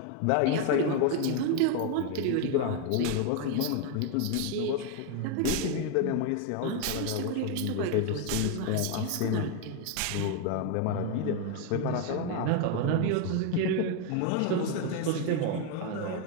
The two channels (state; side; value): different; both; correlation 0.01